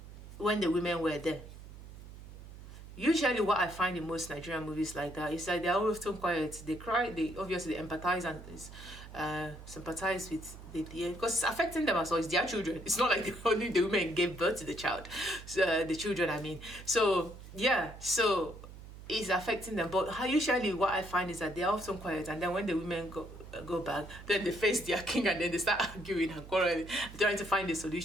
when the women were there. Usually what I find in most Nigerian movies like that is that they're often quiet. They cry, they obviously empathize and sympathize with because it's affecting them as well. It's their children. It's not like only the women gave birth to the child, the children, I mean. So yeah, so it's affecting them. But usually what I find is that they're often quiet, and then when the women go back, then they face their king and then they start arguing and quarreling, trying to find a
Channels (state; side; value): noise; right; hum, 15 dB below the sound